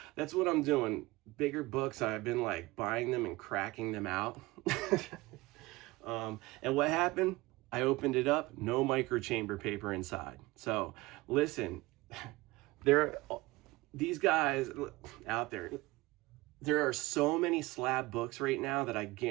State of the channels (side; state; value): left; quieter; 20.5 dB